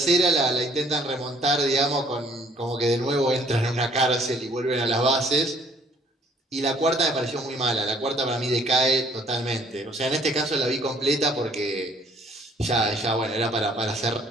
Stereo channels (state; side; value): normal; both; correlation 0.60